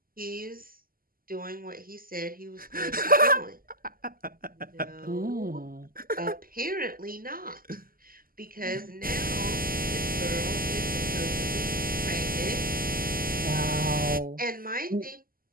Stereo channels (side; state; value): left; late; 0.42 ms